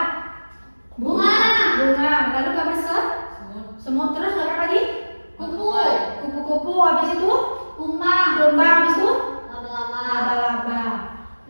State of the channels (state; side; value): inverted; both; correlation -1.00